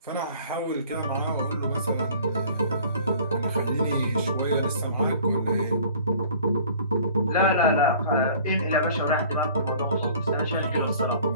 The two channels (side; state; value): both; inverted; correlation -0.49